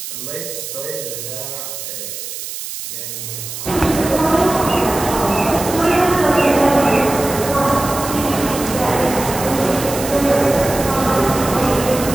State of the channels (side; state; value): right; noise; hiss, 8 dB below the sound